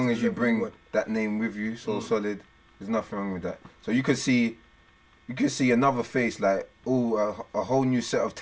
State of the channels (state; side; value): identical; both; correlation 1.00